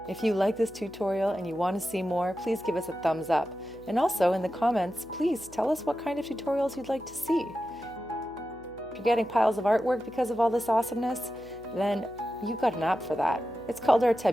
If you like this tutorial and you want to see more, please give us a thumbs up. And also in the comments, please tell us what kind of tutorials you'd like to see. If you're getting piles of artwork because of all this awesomeness, then you've got an app for that. It's called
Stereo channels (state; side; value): noise; right; hum, 22 dB below the sound